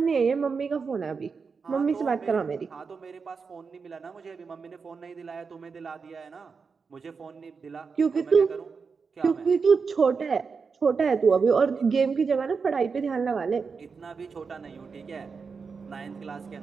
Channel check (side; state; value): left; quieter; 5.2 dB